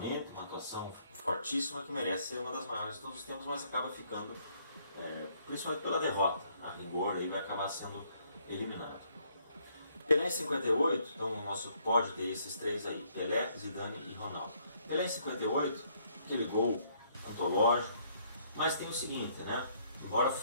uma atuação fortíssima que merece ser uma das maiores de todos os tempos, mas acaba ficando, principalmente pela derrota, a rigor, aí vai acabar sendo eliminado. Pelé em 58, então o nosso pódio tem esses 3 aí, Pelé, Zidane e Ronaldo. Pelé em 58, aquele gol antológico, mas tem o seguinte, né? Embora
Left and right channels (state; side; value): inverted; both; correlation -0.68